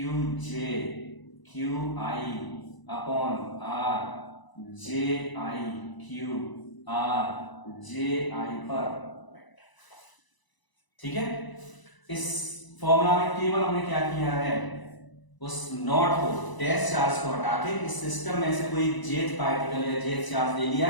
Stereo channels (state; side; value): late; right; 1.0 ms